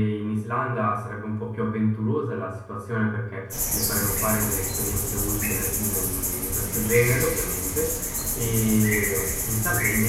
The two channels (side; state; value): both; identical; correlation 1.00